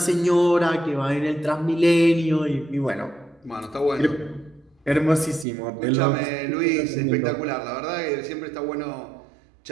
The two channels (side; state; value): left; drops out; at 5.5 s